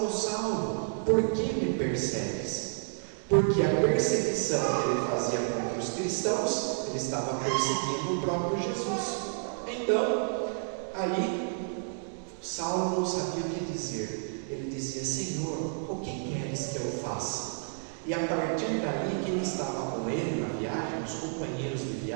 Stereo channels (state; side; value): silent; left; digital silence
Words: Saulo, por que me persegues? Porque a perseguição que ele fazia contra os cristãos, ele estava perseguindo o próprio Jesus. Então, aí, Saulo não sabia o que dizer. Ele dizia: Senhor, o que queres que eu faça? E a partir daí, quem estava com ele na viagem, os companheiros de